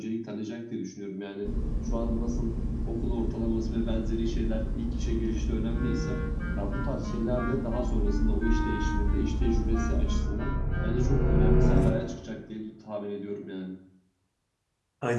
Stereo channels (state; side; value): identical; both; correlation 1.00